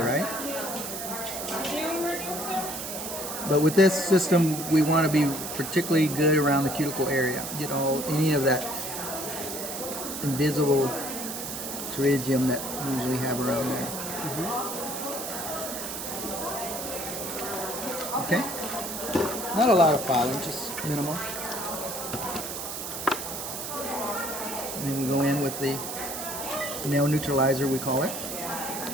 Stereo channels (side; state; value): right; noise; hiss, 6 dB below the sound